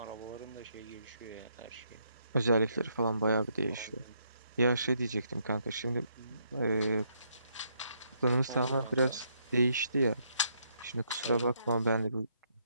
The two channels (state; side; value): inverted; both; correlation -0.74